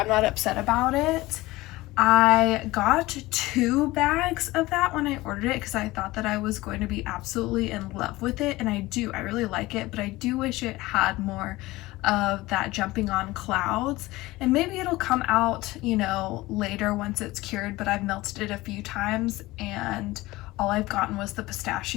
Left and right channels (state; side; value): quieter; right; 19.3 dB